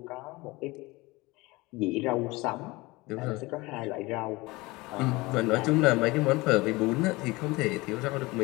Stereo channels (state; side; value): quieter; right; 22.3 dB